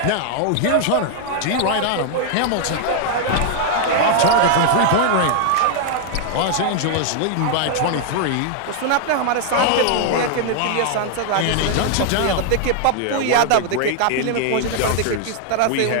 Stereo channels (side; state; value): both; different; correlation 0.00